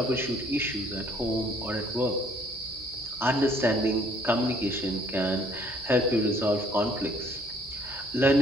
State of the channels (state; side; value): normal; both; correlation 0.61